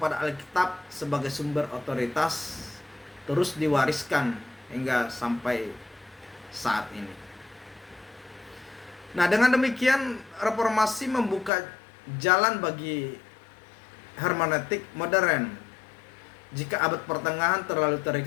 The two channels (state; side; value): drops out; right; at 11.5 s